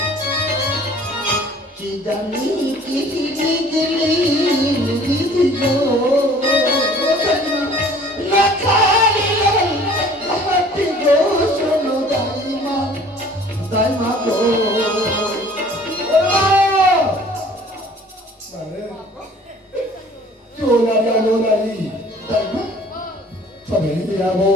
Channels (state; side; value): normal; both; correlation 0.51